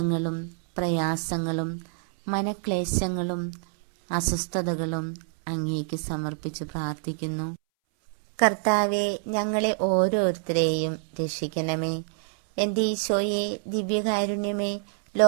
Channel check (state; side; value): silent; left; 60 dB below the other